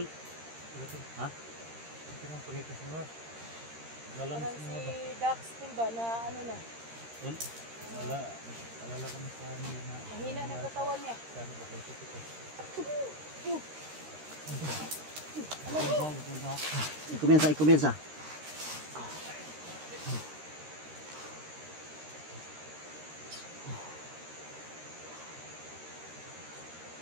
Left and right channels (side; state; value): left; late; 13 ms